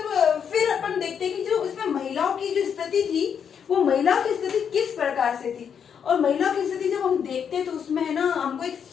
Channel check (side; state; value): right; quieter; 7.5 dB